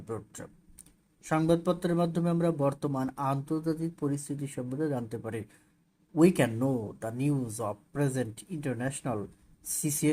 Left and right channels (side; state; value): both; identical; correlation 1.00